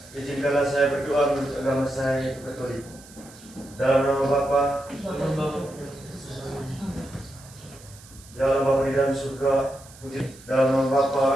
Izinkanlah saya berdoa menurut agama saya Katolik. Dalam nama Bapa, dalam Bapa di dalam surga, dalam nama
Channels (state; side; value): noise; right; hiss, 22 dB below the sound